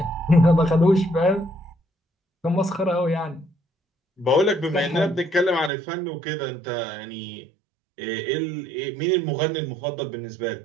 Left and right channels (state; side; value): drops out; left; at 5.7 s